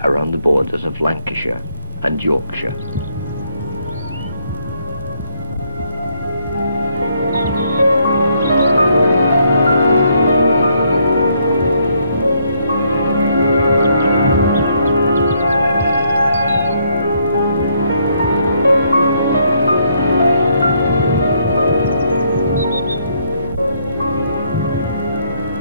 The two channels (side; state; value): both; inverted; correlation -0.70